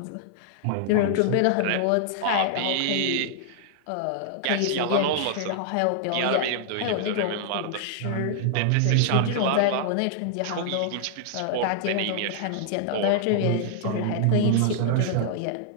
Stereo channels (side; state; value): both; different; correlation -0.01